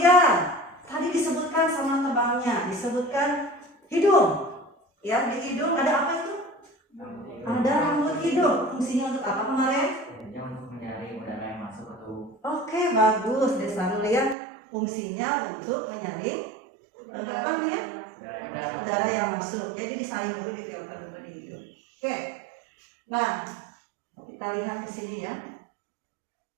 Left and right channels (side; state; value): left; drops out; at 14.4 s